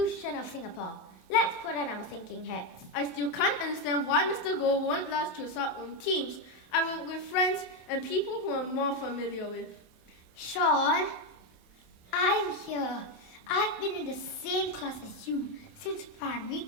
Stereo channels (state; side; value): late; right; 27 ms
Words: of Singapore. Let's put on our thinking hats. I still can't understand why Mr. Goh won't let us choose our own teams. I work with friends and people who I'm more familiar with. Sean, I'm here. I've been in the same class as you since primary